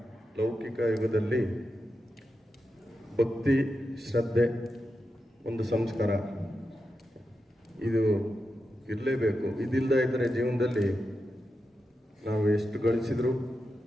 ಲೌಕಿಕ ಯುಗದಲ್ಲಿ ಭಕ್ತಿ ಶ್ರದ್ಧೆ ಒಂದು ಸಂಸ್ಕಾರ ಇದು ಇರಲೇಬೇಕು. ಇದಿಲ್ಲದ ಇದ್ದರೆ ಜೀವನದಲ್ಲಿ ನಾವು ಎಷ್ಟು ಗಳಿಸಿದ್ರು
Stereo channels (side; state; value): both; normal; correlation 0.89